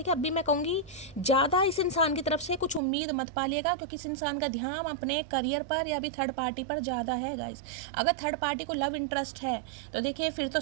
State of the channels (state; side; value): drops out; left; at 2.8 s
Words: अब भी मैं कहूँगी ज़्यादा इस इंसान की तरफ से कुछ उम्मीद मत पालिएगा, क्योंकि इस इंसान का ध्यान अपने करियर पर या भी थर्ड पार्टी पर ज़्यादा है गाइस। अगर थर्ड पार्टी को लव इंटरेस्ट है तो देखिए फिर तो